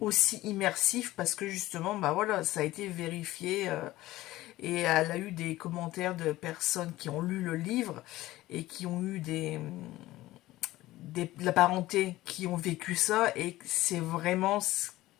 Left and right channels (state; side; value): quieter; right; 16.8 dB